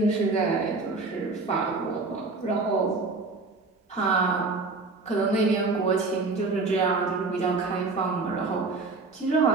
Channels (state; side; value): quieter; left; 3.8 dB